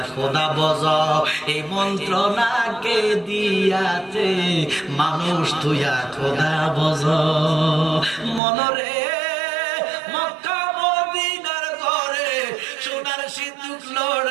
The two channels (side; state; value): left; drops out; at 8.4 s